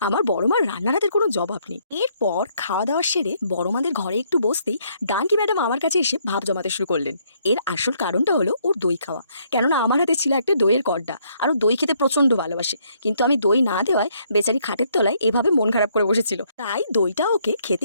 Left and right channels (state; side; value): inverted; both; correlation -0.69